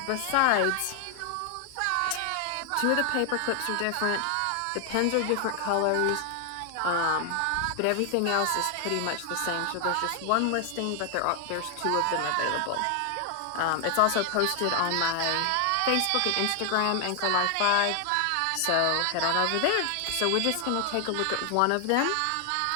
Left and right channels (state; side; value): different; both; correlation 0.00